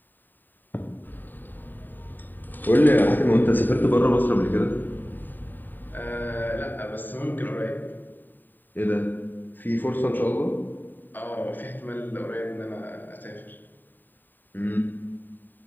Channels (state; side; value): late; right; 0.090 ms